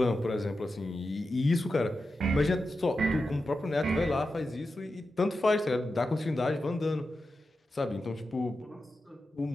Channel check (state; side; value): normal; both; correlation 0.90